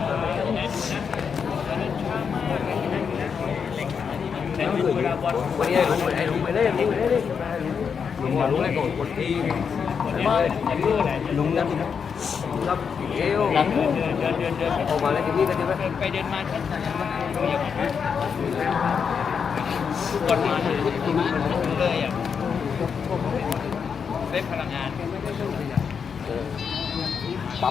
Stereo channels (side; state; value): right; quieter; 6.5 dB